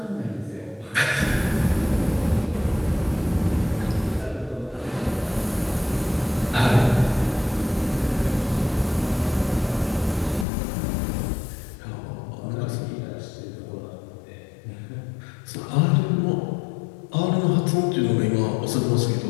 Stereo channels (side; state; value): right; drops out; at 10.5 s